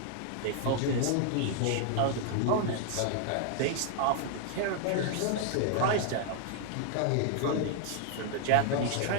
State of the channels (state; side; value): different; both; correlation 0.00